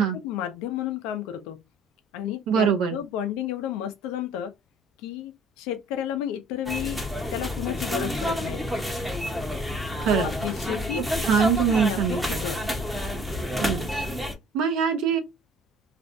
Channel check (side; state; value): both; normal; correlation 0.52